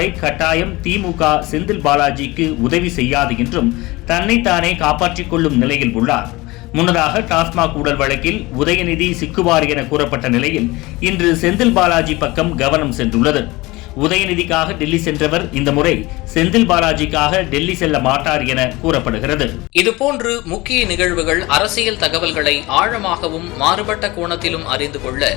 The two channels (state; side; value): quieter; right; 21.4 dB